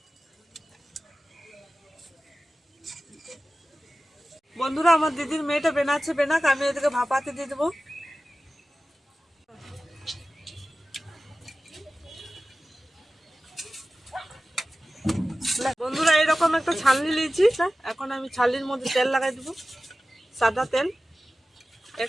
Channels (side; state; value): both; normal; correlation 0.95